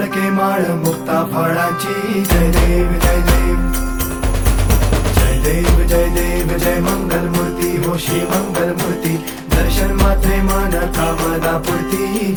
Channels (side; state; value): both; identical; correlation 1.00